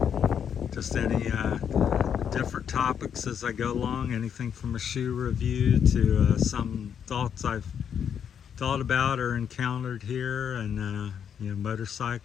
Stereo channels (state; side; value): quieter; right; 8.1 dB